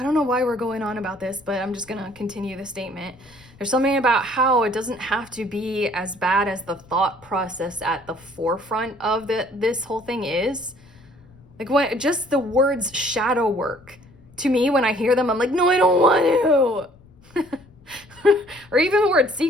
don't know why we're going on about this, but I'm just going to continue the statement. There's something about how it doesn't have to be as bad as the thought process at the forefront of this whole thing is. Like what, just the words shadow work. To me, when I hear them, I'm like, no, I don't want to. Or even the word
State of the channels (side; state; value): left; noise; rumble, 26 dB below the sound